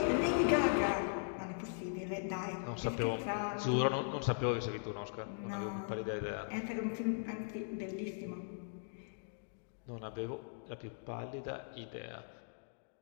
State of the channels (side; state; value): right; silent; digital silence